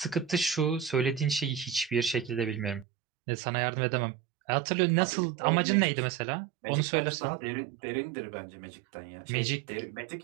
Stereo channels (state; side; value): drops out; left; at 2.9 s